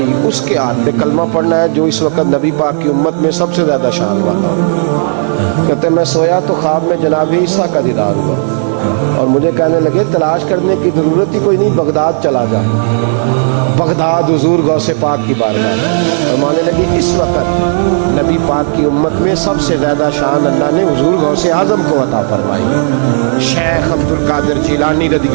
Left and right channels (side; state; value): left; silent; digital silence